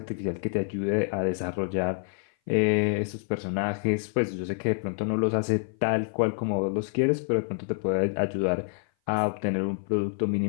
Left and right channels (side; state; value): right; silent; 56 dB below the other